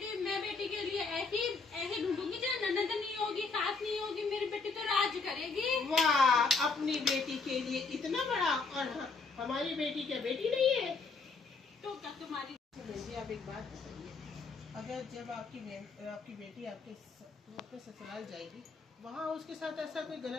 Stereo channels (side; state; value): right; quieter; 4.3 dB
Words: मैं बेटी के लिए ऐसी ढूंढूंगी जो ननद नहीं होगी, सास नहीं होगी। मेरी बेटी तो राज करेगी। वाह, अपनी बेटी के लिए इतना बड़ा, और हमारी बेटी क्या बेटी नहीं है? तो क्या तुम्हारी? बहन जी आप एक बात बताइए, अगर जब आपकी बेटी अपने ससुराल जाएगी, वहाँ उसके साथ ऐसा कोई